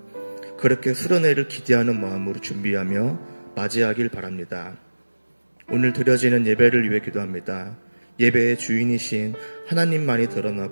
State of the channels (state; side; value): inverted; both; correlation -1.00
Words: 그렇게 수련회를 기대하는 마음으로 준비하며 맞이하길 바랍니다. 오늘 드려지는 예배를 위해 기도합니다. 예배의 주인이신 하나님만이